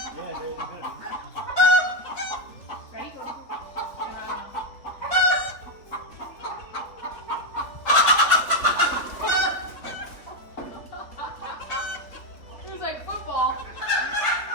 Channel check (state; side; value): late; right; 3.5 ms